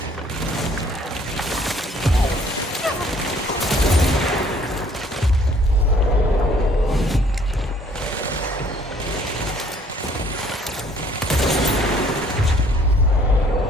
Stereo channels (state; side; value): normal; both; correlation 0.59